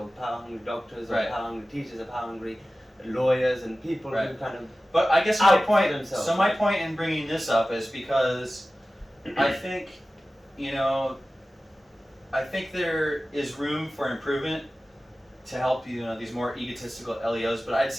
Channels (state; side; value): normal; both; correlation 0.96